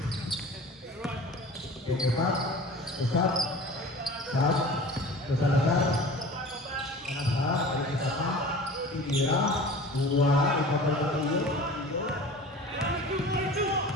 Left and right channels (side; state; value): both; normal; correlation 0.40